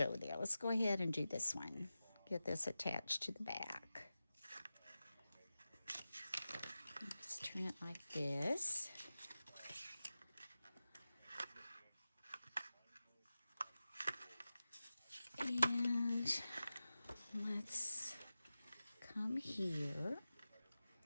there. Let's go ahead and do this one. Get this attached to the back. Let's turn it like this. And let's come here.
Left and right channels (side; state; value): both; inverted; correlation -0.95